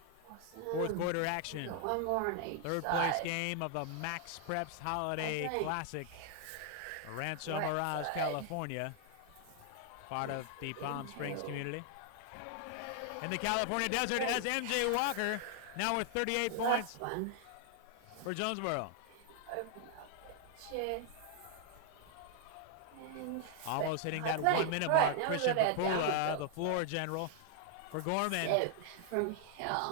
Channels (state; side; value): different; both; correlation 0.00